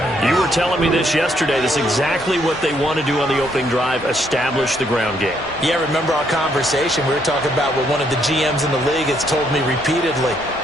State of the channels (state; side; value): noise; right; hum, 27 dB below the sound